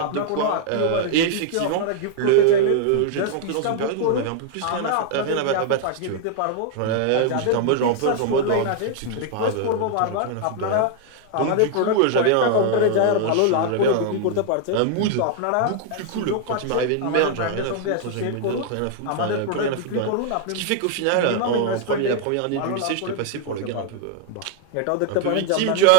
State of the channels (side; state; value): both; different; correlation 0.00